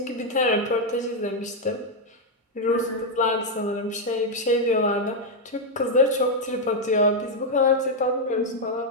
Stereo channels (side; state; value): both; normal; correlation 0.00